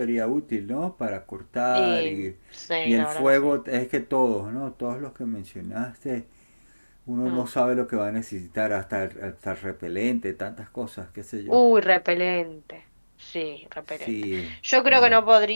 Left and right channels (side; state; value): both; inverted; correlation -1.00